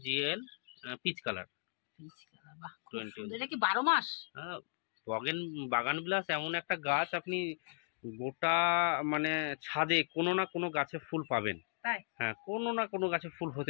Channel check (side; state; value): right; silent; digital silence